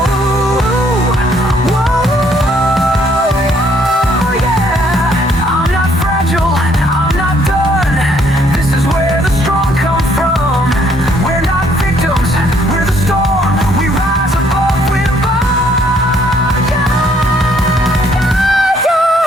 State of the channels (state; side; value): normal; both; correlation 0.66